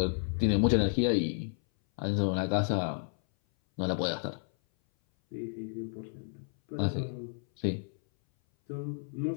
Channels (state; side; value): silent; right; 57 dB below the other